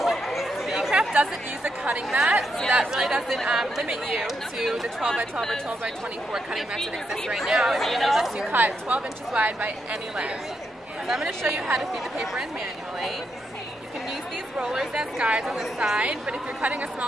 The eCraft doesn't use a cutting mat, so that really doesn't limit you to the 12 by 12 or 12 by 24 cutting mats that exist right now. It lets you cut 12 inches wide by any length. So I'm going to show you how to feed the paper in manually. You can use these rollers as guides on the side, but if you're cutting a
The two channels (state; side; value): normal; both; correlation 0.82